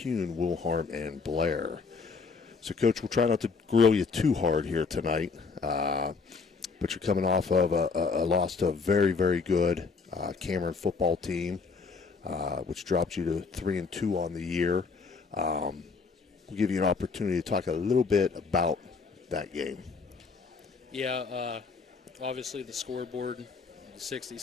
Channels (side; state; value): right; quieter; 4.8 dB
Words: Wilharm, and Blair. So, Coach, we'll try not to grill you too hard here tonight. But you're coming off of a loss to a very, very good Cameron football team, which dropped you to 3-2 on the year. We'll give you an opportunity to talk a little bit about that game. Yeah, obviously the scoreboard,